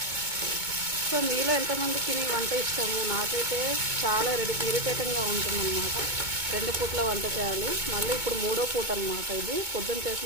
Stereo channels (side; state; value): left; late; 2.2 ms